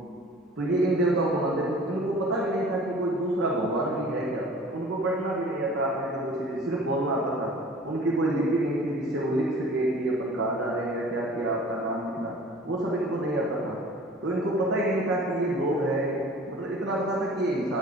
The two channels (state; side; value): normal; both; correlation 0.46